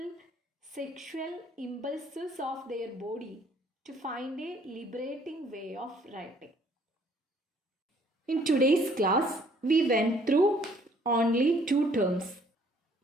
sexual impulses of their body to find a liberating way of writing. In today's class, we went through only two terms.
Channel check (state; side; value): normal; both; correlation 0.61